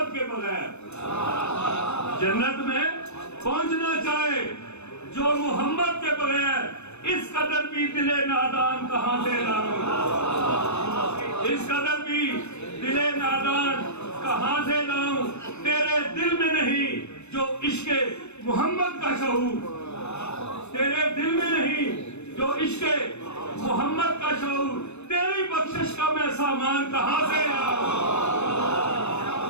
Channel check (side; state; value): right; late; 0.81 ms